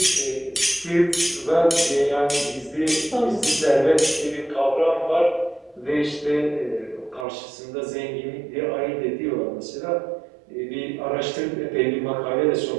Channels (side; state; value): left; drops out; at 7.2 s